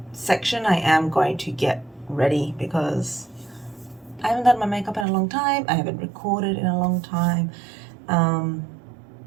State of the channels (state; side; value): drops out; left; at 5.1 s